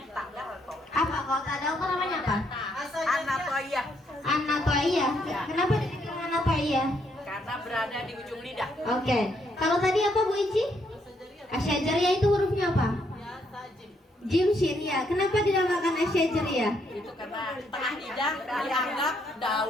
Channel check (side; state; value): both; normal; correlation 0.73